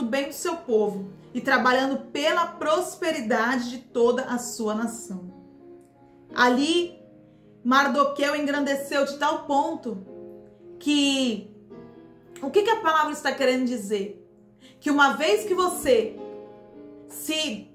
bem do seu povo, e trabalhando pela prosperidade de toda a sua nação. Ali, Mardoqueu engrandeceu de tal ponto que... O que a palavra está querendo dizer? Que uma vez que você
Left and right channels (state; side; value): identical; both; correlation 1.00